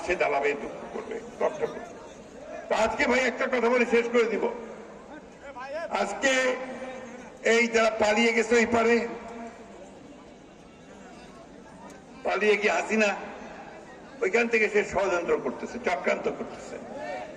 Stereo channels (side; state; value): both; identical; correlation 1.00